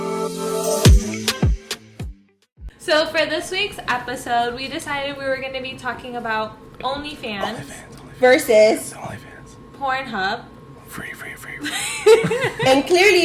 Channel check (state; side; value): identical; both; correlation 1.00